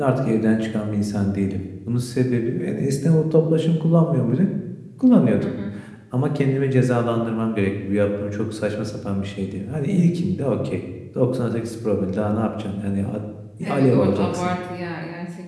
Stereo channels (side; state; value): both; identical; correlation 1.00